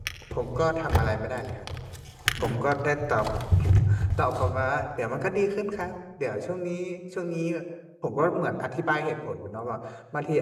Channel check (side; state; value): both; identical; correlation 1.00